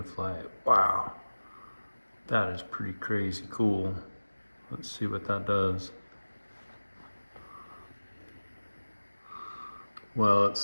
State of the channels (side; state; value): both; inverted; correlation -1.00